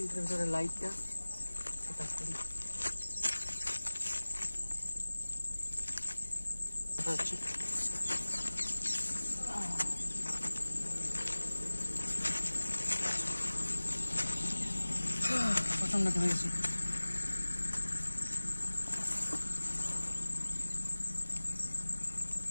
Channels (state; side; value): inverted; both; correlation -1.00